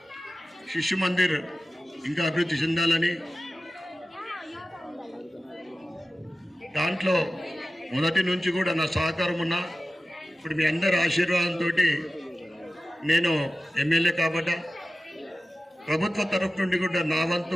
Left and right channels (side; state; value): both; normal; correlation 0.95